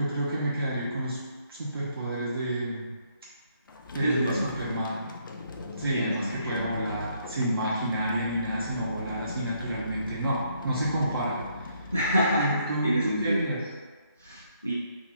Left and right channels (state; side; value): inverted; both; correlation -0.71